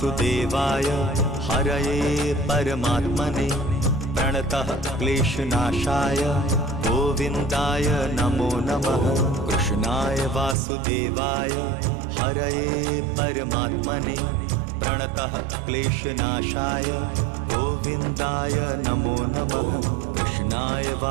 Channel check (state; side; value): drops out; left; at 10.6 s